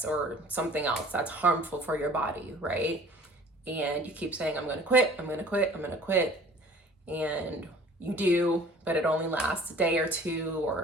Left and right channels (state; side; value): normal; both; correlation 0.50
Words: or something else that's harmful for your body, right? And you keep saying, I'm gonna quit, I'm gonna quit, I'm gonna quit. And you do, but it only lasts a day or two,